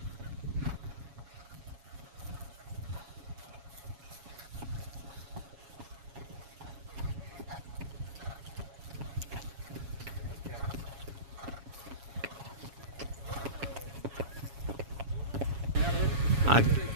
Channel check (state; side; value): late; left; 7.2 ms